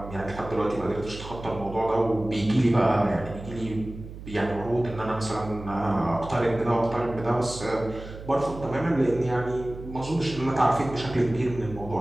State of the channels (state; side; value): noise; right; hum, 13 dB below the sound